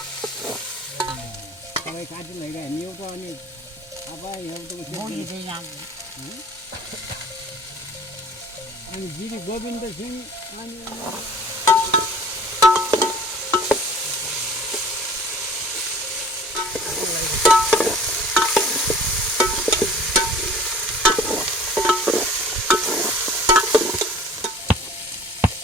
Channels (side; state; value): both; normal; correlation 0.46